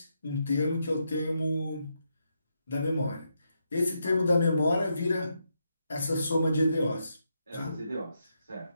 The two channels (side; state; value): both; inverted; correlation -0.82